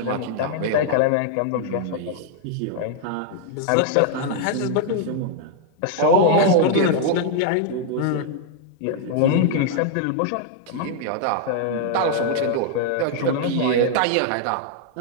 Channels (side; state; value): both; different; correlation 0.00